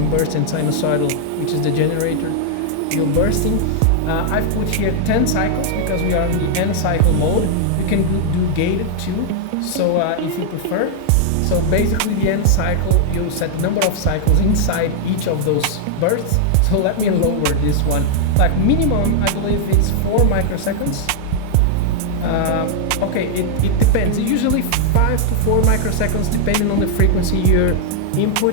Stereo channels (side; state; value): both; different; correlation -0.01